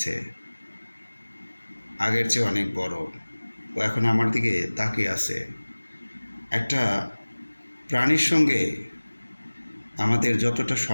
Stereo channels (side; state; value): both; inverted; correlation -1.00